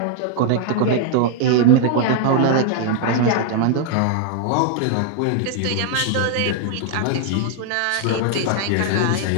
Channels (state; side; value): different; both; correlation 0.00